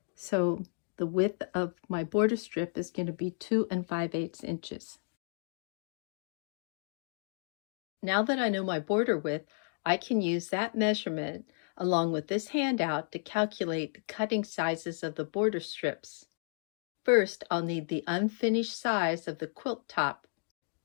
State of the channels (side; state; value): right; silent; digital silence